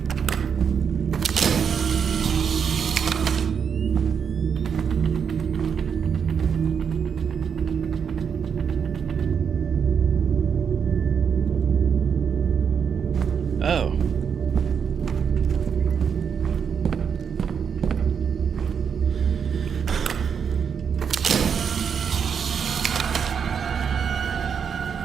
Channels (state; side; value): quieter; left; 7.0 dB